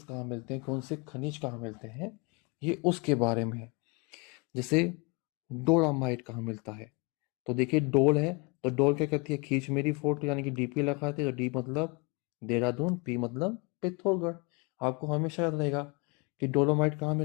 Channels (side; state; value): right; quieter; 29.1 dB